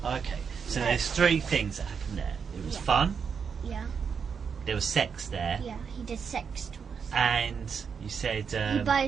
okay. So Yeah. there's 3 things that happened there. It was Yeah. fun, Yeah, there was sex there, yeah, he did sex to us. and you said, He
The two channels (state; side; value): quieter; left; 6.4 dB